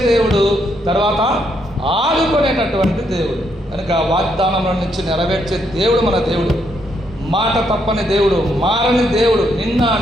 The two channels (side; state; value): both; normal; correlation 0.76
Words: దేవుడు, తర్వాత ఆదుకునేటటువంటి దేవుడు. కనుక వాగ్దానముల నుంచి నెరవేర్చే దేవుడు మన దేవుడు. మాట తప్పని దేవుడు, మారని దేవుడు, నిన్న